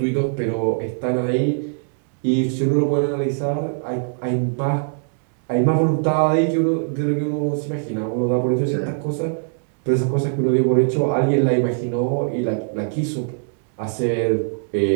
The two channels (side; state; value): left; silent; 65 dB below the other